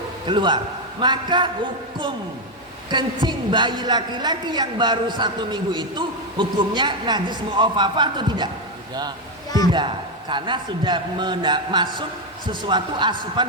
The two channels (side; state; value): both; normal; correlation 0.05